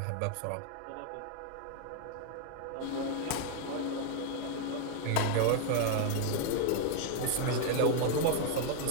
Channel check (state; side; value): different; both; correlation 0.00